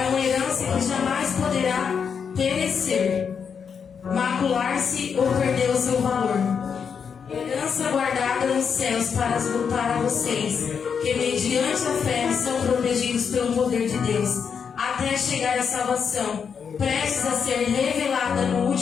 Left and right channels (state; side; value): quieter; right; 6.6 dB